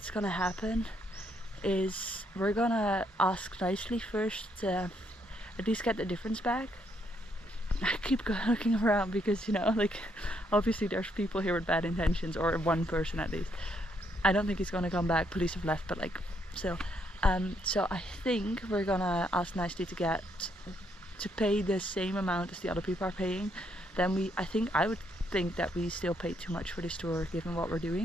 gonna happen is we're gonna ask nicely first to at least get the difference back. I keep looking around because, you know, like obviously there's people here with bad intentions, or one person at least. I don't think he's gonna come back. Police have left, but like still. So I think we're gonna ask nicely to pay the same amount as the other people are paying. Then I would think that we still paid too much for this tour given what we're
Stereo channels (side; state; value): both; normal; correlation 0.74